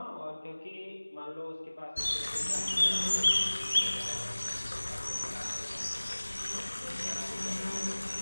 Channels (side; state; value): both; inverted; correlation -1.00